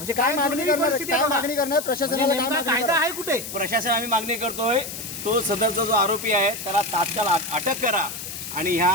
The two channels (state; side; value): noise; left; hiss, 9 dB below the sound